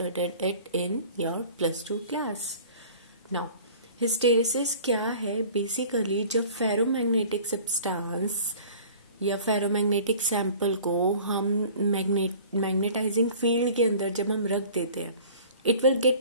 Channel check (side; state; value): both; inverted; correlation -0.46